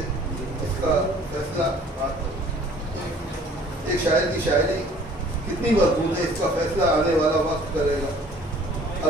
इसका फैसला, एक शायर की शायरी कितनी मजबूत है, इसका फैसला आने वाला वक्त करेगा।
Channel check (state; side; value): normal; both; correlation 0.53